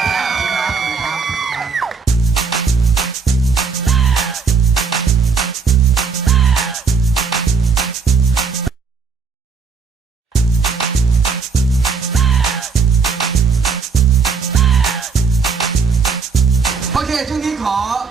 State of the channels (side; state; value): left; quieter; 5.3 dB